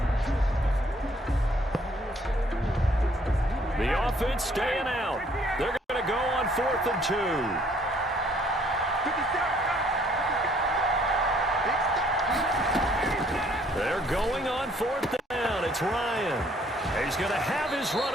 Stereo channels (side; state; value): both; normal; correlation 0.63